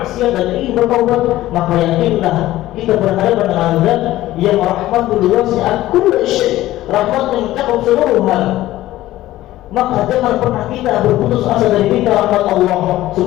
dan ingin bertaubat, maka yakinlah kita berhadapan dengan Zat yang rahmatul wasi'at kulli syai', rahmat yang mencakup seluruh hal. Maka jangan pernah kita berputus asa dari minta rahmat Allah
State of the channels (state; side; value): quieter; right; 15.4 dB